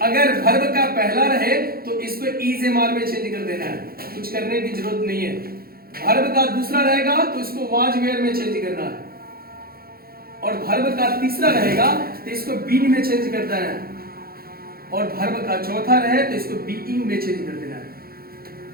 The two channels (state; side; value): late; left; 0.44 ms